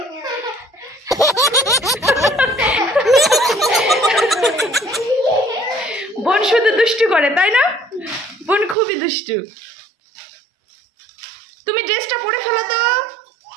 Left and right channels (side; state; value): left; drops out; at 8.8 s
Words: বোন শুধু দুষ্টু করে, তাই না? বোন খুবই দুষ্টু। তুমি ড্রেসটা পরে ফেলো তো।